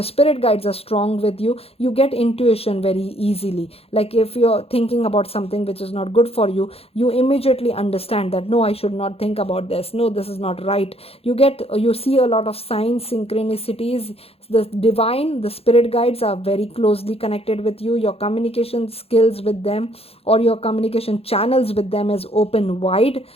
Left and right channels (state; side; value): late; right; 0.29 ms